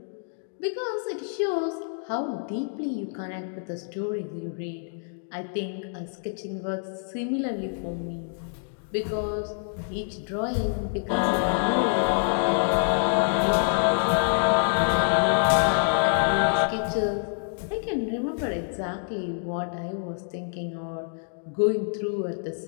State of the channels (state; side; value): silent; right; digital silence